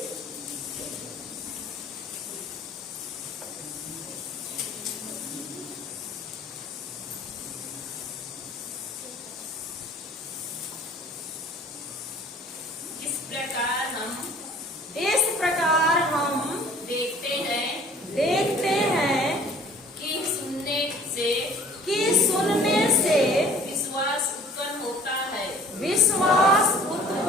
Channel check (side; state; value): both; normal; correlation 0.51